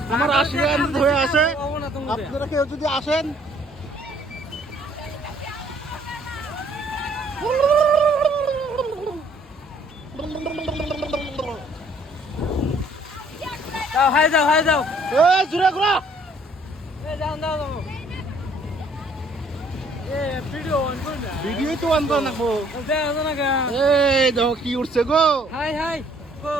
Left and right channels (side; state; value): both; normal; correlation 0.61